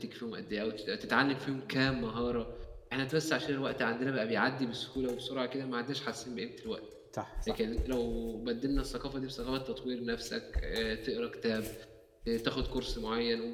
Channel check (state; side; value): identical; both; correlation 1.00